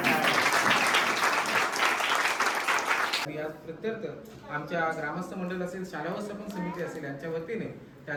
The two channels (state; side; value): identical; both; correlation 1.00